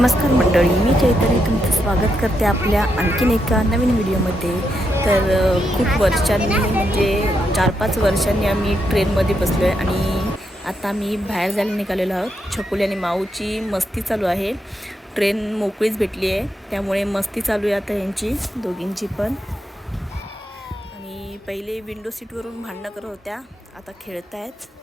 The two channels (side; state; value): both; normal; correlation 0.82